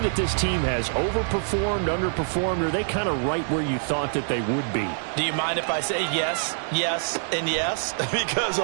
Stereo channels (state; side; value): silent; left; 57 dB below the other